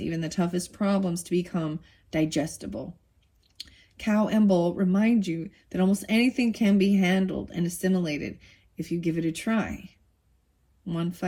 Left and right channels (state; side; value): identical; both; correlation 1.00